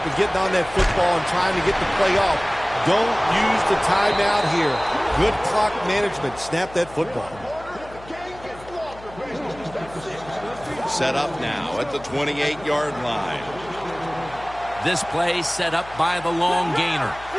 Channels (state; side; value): noise; left; hum, 19 dB below the sound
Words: and getting on that football and trying to get the play off. Don't use the timeout here. Good clock management. Snap that football. Set up now at the 28-yard line. This play set up by the long gainer.